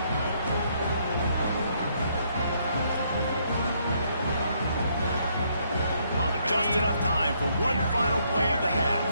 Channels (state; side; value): inverted; both; correlation -0.71